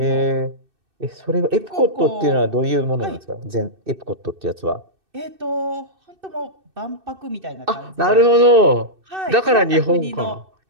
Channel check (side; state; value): left; late; 2.6 ms